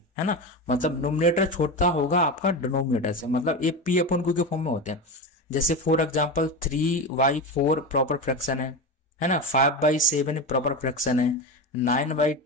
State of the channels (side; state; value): both; normal; correlation 0.21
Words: है ना। मतलब नोमिनेटर छोटा होगा आपका डिनोमिनेटर से, मतलब ये P अपॉन Q के फॉर्म में होते हैं। जैसे फॉर एग्जाम्पल 3/4 प्रॉपर फ्रैक्शन है ना, 5/7 प्रॉपर फ्रैक्शन है,